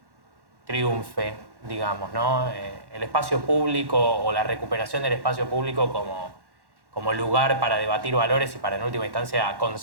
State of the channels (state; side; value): late; left; 1.1 ms